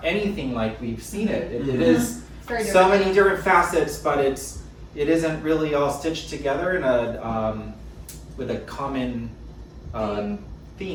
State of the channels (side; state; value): both; identical; correlation 1.00